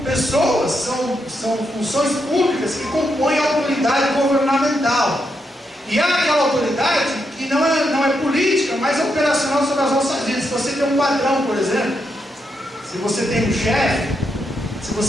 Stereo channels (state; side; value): normal; both; correlation 0.82